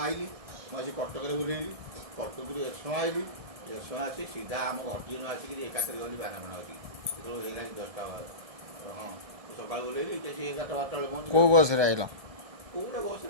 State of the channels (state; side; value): late; left; 1.7 ms